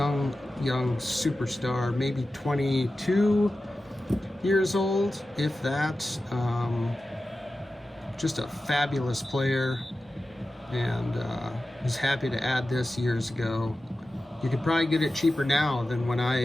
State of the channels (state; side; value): normal; both; correlation 0.94